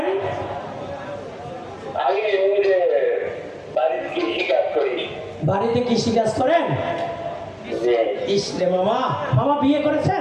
আমি এমনিতে বাড়িতে কৃষি কাজ করি। বাড়িতে কৃষি কাজ করেন? ইসলে মামা, মামা বিয়ে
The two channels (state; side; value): identical; both; correlation 1.00